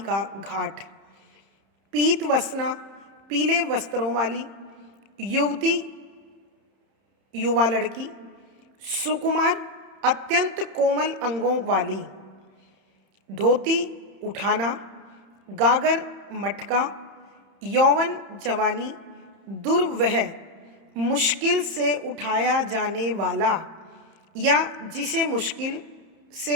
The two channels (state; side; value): late; left; 31 ms